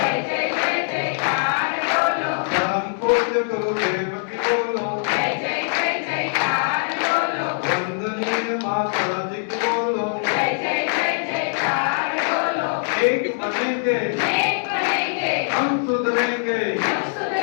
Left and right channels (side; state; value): right; silent; 64 dB below the other